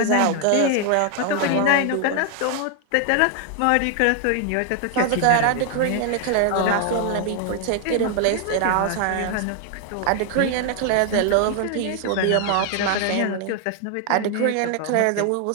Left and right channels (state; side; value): different; both; correlation 0.00